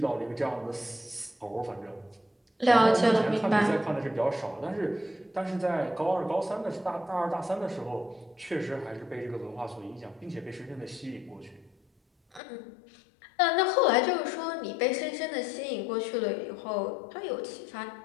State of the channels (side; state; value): right; drops out; at 12.4 s